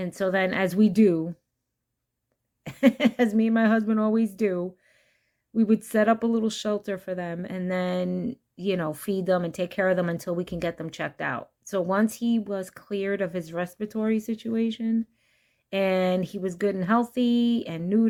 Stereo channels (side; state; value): both; identical; correlation 1.00